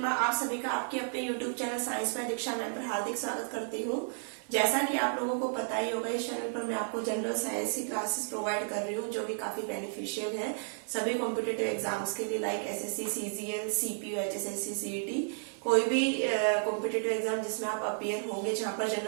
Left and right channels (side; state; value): left; silent; 56 dB below the other